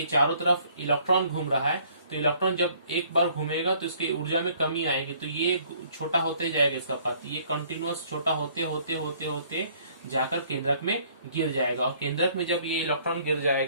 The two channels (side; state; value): both; inverted; correlation -0.60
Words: चारों तरफ इलेक्ट्रॉन घूम रहा है तो इलेक्ट्रॉन जब एक बार घूमेगा तो इसकी ऊर्जा में कमी आएगी, तो ये छोटा होते जाएगा इसका पथ, ये कंटिन्यूअस छोटा होते होते होते होते जाकर केंद्रक में गिर जाएगा और केंद्रक में जब ये इलेक्ट्रॉन गिर